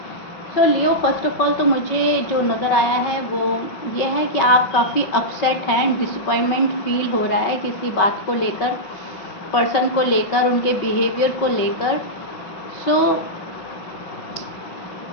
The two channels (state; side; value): late; right; 5.3 ms